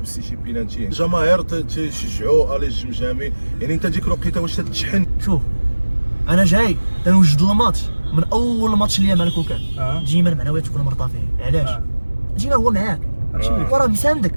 شي بينالتي، الجماهير تشجعوا الي الجمجامي، يعني انت ديك الوقيته واش تتشحن؟ شوف انا جاي تنوجد الماتش من اول ماتش ليا مع الكوكان. ديما المعنويات تكون مرتفعين. علاش؟ ديما هو معاك وراه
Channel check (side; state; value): both; inverted; correlation -1.00